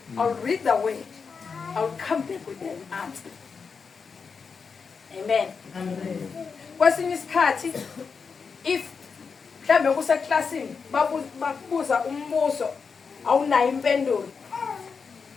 I'll read the word, I'll come back with an answer. Amen. Amen. Kwesinye isikhathi if mhlambe kuseklasini bakubuza umbuzo awunayo impendulo,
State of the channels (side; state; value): right; quieter; 5.5 dB